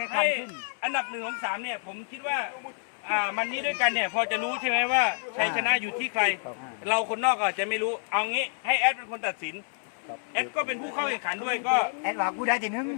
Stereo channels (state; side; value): silent; right; 59 dB below the other